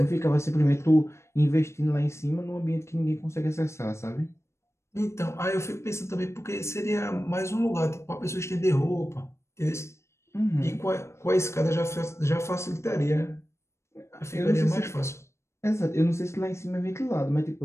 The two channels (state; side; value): late; right; 0.13 ms